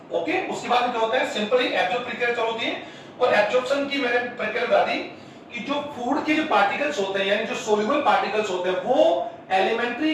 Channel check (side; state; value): both; identical; correlation 1.00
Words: okay। उसके बाद क्या होता है सिंपली एब्जॉर्ब प्रक्रिया चालू होती है और एब्जॉर्प्शन की मैंने प्रक्रिया बता दी कि जो फूड के जो पार्टिकल्स होते हैं यानी जो सोल्यूबल पार्टिकल्स होते हैं वो